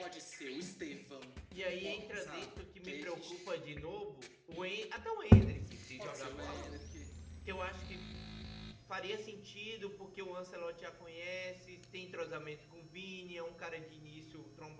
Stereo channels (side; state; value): both; identical; correlation 1.00